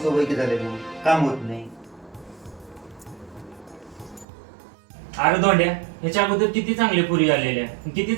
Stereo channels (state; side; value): drops out; left; at 4.2 s